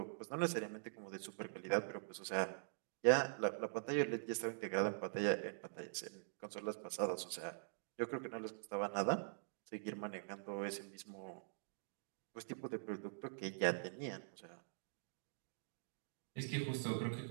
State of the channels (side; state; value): left; silent; digital silence